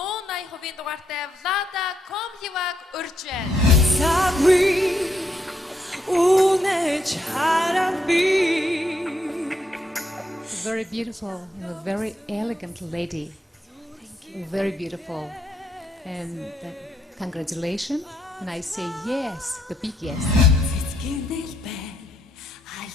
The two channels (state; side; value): normal; both; correlation 0.77